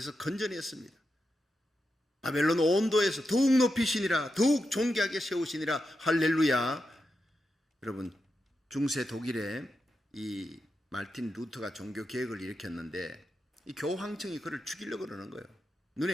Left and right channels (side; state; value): both; normal; correlation 0.88